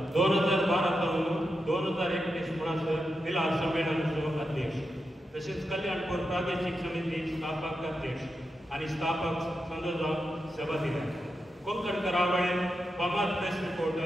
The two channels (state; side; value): normal; both; correlation 0.88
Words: 2012 पासून 2021 म्हणसर मिलाद संमेलनाचो अध्यक्ष तसेच कल्याणपूर प्रादेशीक समिती स्थापक अध्यक्ष आणि स्थापक संघ जावन सेवा दिल्या. कोंकण करावळें फामाद प्रेस